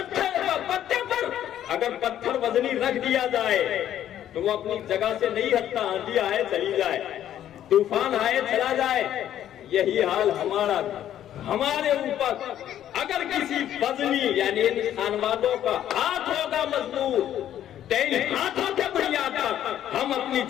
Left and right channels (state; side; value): quieter; right; 11.2 dB